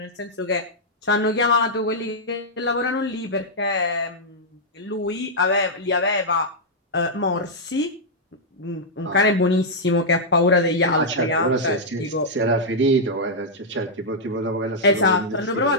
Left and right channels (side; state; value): both; normal; correlation -0.07